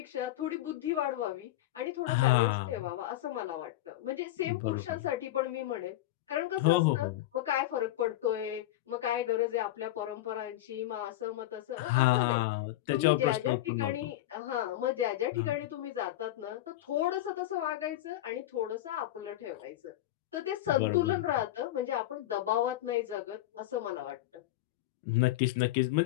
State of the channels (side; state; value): right; quieter; 14.8 dB